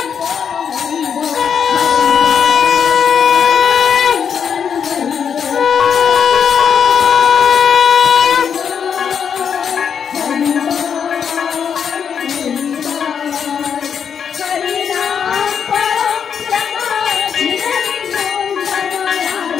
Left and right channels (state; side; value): quieter; right; 7.3 dB